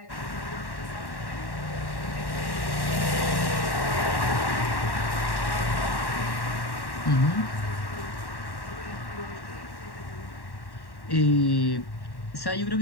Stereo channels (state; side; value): late; right; 1.1 ms